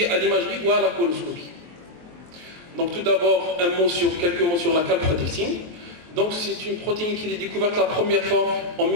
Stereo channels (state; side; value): late; left; 23 ms